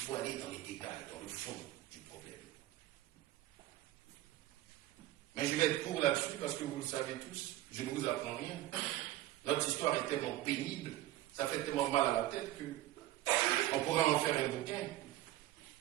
aller dans les détails, dans le fond du problème. Mais je vais être court là-dessus parce que vous le savez tous, je ne vous apprends rien. Notre histoire est tellement pénible, ça fait tellement mal à la tête qu'on pourra en faire un bouquin.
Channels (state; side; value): quieter; left; 15.3 dB